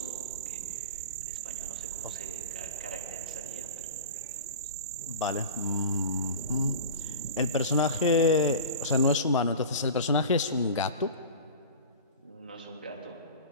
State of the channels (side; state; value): both; inverted; correlation -0.33